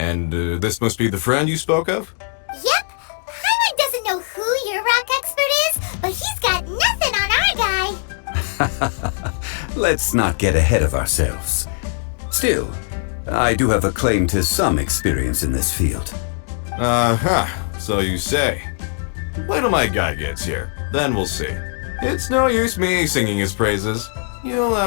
this must be the friend you spoke of? Yep. Paimon doesn't know who your rock expert is, but he's got nothing on our guy. Let's not get ahead of ourselves. Still, I do have a claim to some experience in this field. So you say. Wait till my guy gets here, then we'll see. It's no use me singing his praises. You'll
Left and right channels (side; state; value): right; silent; 66 dB below the other